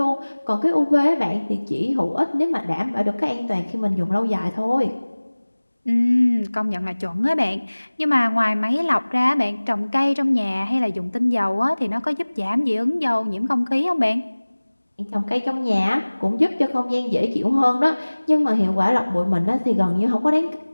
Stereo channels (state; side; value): inverted; both; correlation -1.00